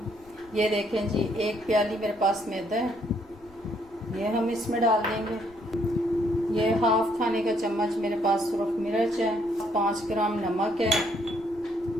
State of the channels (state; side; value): noise; left; rumble, 26 dB below the sound